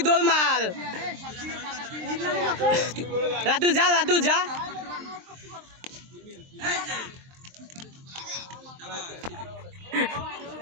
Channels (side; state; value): left; late; 23 ms